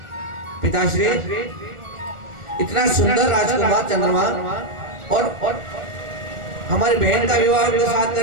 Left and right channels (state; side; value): late; left; 1.4 ms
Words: पिताश्री, इतना सुंदर राजकुमार चंद्रमा और हमारी बहन का विवाह उनके साथ